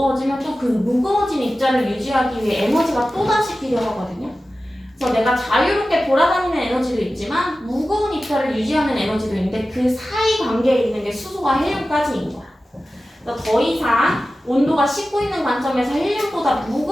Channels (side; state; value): both; normal; correlation 0.95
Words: 또 그 무거워진 입자를 유지하기 위해 에너지가 또다시 필요하거든요. 그래서 내가 자유롭게 돌아다니는 에너지도 있지만 무거운 입자를 유지하는 에너지도 있는데 그 사이 관계에 있는 게 수소와 헬륨까지인 거야. 그래서 더 이상 온도가 식고 있는 관점에서 헬륨보다